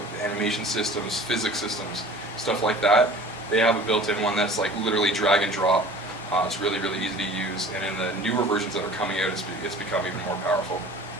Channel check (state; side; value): normal; both; correlation 0.44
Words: animation systems, physics systems, stuff like that. They have a built-in one that's like literally drag and drop. It's really, really easy to use, and in the newer versions that are coming out, it's become even more powerful.